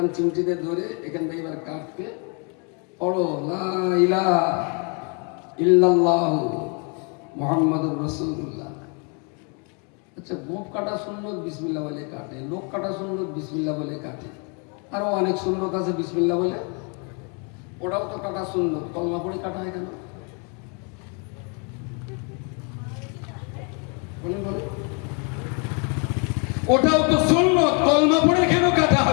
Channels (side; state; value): right; quieter; 36.1 dB